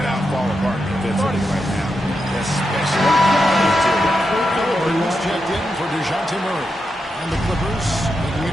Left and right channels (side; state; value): both; normal; correlation 0.86